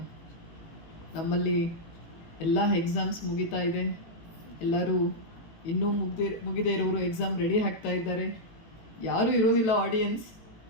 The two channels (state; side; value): late; right; 18 ms